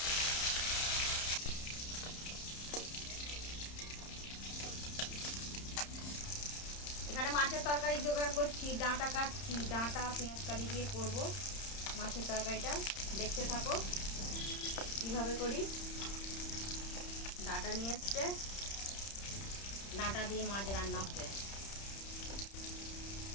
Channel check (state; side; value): late; right; 31 ms